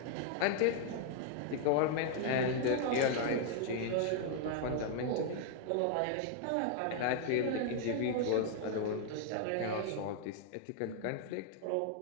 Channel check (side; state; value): both; different; correlation 0.00